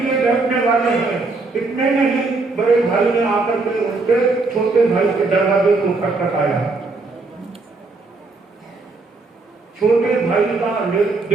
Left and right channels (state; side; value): quieter; left; 3.7 dB